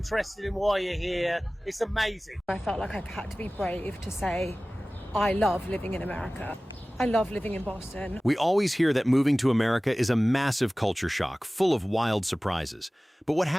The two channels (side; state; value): both; normal; correlation 0.98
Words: in why you're here. It's amazing. I felt like I had to be brave to say, I love living in America. I love living in Boston. We always hear that moving to America is a massive culture shock, full of wild surprises. But what